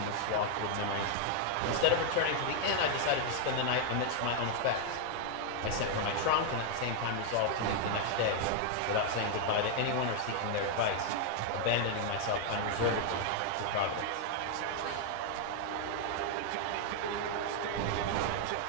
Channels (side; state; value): both; different; correlation 0.00